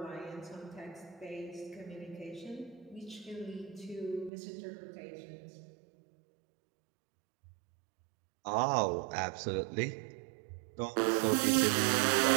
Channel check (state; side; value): drops out; left; at 4.3 s